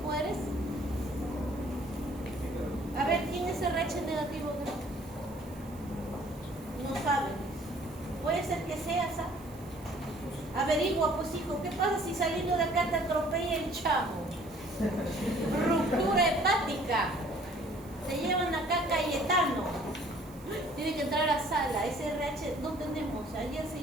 eres? A ver, ¿quién es RH negativo? No saben. Puede ser que seas, averigua, pues hijo, ¿qué pasa si saliendo de acá te atropella el chavo? Ruptura hepática. Te llevan acá Cayetano. Tiene que entrar a sala. SRH no tenemos. Ayer se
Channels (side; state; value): right; noise; hiss, 24 dB below the sound